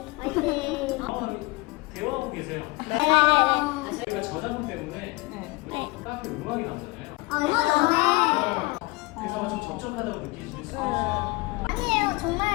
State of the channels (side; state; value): right; quieter; 23.4 dB